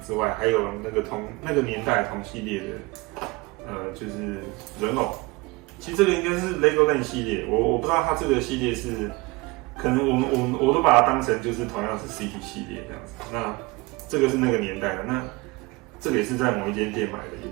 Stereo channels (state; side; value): quieter; left; 23.8 dB